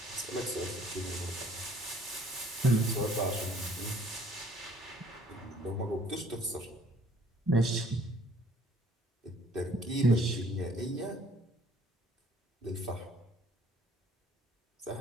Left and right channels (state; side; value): normal; both; correlation 0.58